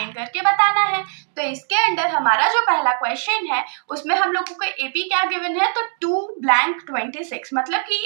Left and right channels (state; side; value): silent; left; 62 dB below the other